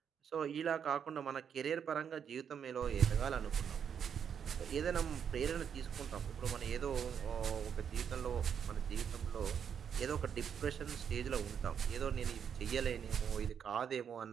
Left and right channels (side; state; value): left; quieter; 7.8 dB